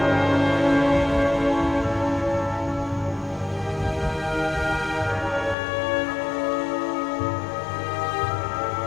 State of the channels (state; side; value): drops out; right; at 5.6 s